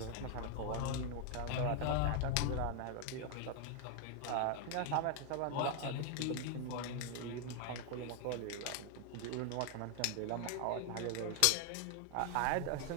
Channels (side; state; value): both; different; correlation 0.00